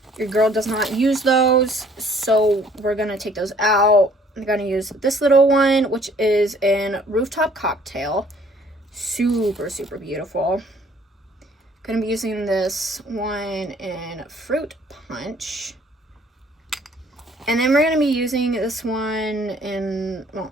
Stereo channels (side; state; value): both; normal; correlation 0.58